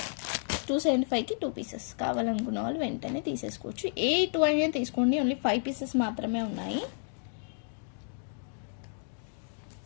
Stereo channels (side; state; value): right; silent; 57 dB below the other